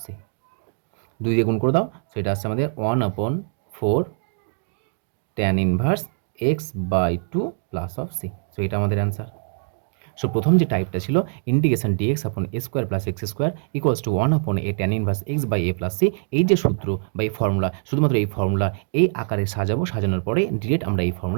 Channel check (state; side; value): silent; left; digital silence